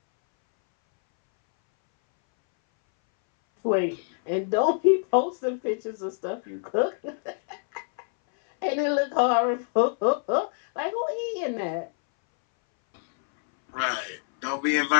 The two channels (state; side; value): silent; right; 61 dB below the other